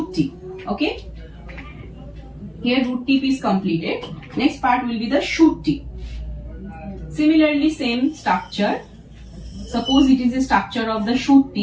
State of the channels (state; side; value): identical; both; correlation 1.00